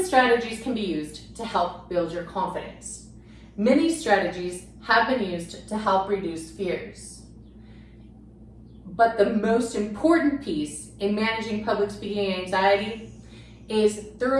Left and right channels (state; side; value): identical; both; correlation 1.00